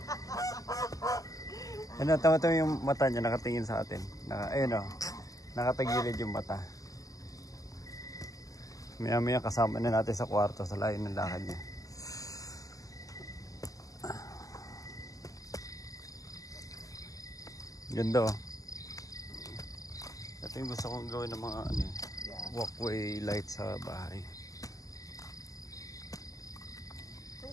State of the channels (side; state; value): right; late; 0.17 ms